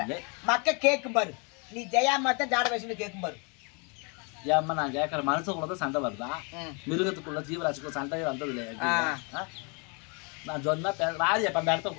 மக்க கேட்கும் பாரு, நீ ஜெயாமத்தான் ஜாட வயசுல கேட்கும் பாரு. ஏம்மா நான் கேட்கற மனுஷன் கூட சண்டை வருதா? மிருகத்துக்குள்ள ஜீவராசிக்குள்ள சண்டையே வந்தது இல்லையா? நான் சொன்னா ராஜி அப்ப அந்த இடத்த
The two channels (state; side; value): quieter; right; 33.4 dB